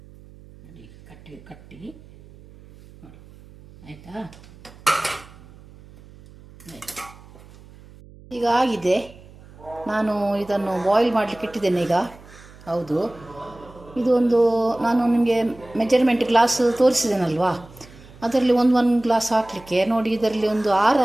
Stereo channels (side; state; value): right; noise; hum, 22 dB below the sound